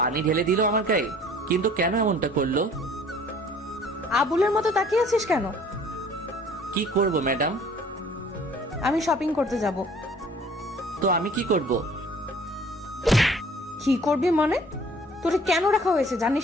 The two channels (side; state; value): both; normal; correlation 0.53